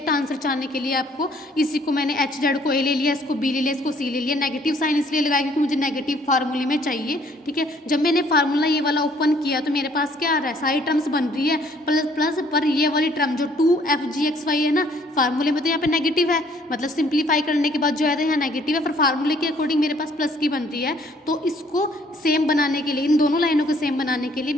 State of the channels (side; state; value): both; normal; correlation 0.61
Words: आंसर चाहने के लिए आपको इसी को मैंने HZ को A ले लिया, इसको B ले लिया, इसको C ले लिया। नेगेटिव साइन इसलिए लगाया क्योंकि मुझे नेगेटिव फार्मूले में चाहिए, ठीक है। जब मैंने फार्मूला ये वाला ओपन किया तो मेरे पास क्या आ रहा है, सारी टर्म्स बन रही है प्लस प्लस, पर ये वाली टर्म जो 2FGXY है ना, फार्मूले में तो यहाँ पे नेगेटिव है, मतलब सिंप्लीफाई करने के बाद जो है तो यहाँ नेगेटिव है, पर फार्मूले के अकॉर्डिंग मेरे पास प्लस की बन रही है। तो इसको सेम बनाने के लिए, इन दोनों लाइनों को सेम बनाने के लिए